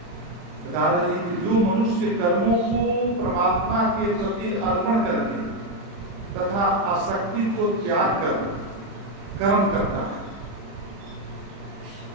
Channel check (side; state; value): left; late; 40 ms